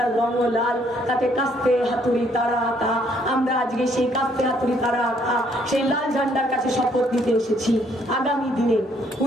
রঙ লাল, তাতে কাস্তে হাতুড়ি তারা আঁকা। আমরা আজকে সেই কাস্তে হাতুড়ি তারা আঁকা সেই লাল ঝান্ডার কাছে শপথ নিতে এসেছি। আগামী দিনে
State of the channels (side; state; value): both; normal; correlation 0.67